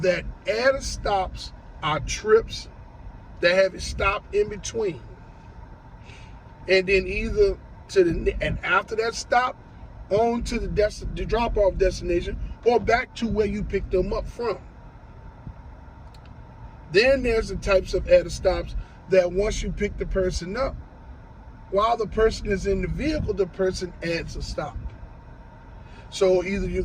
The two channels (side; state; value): both; identical; correlation 1.00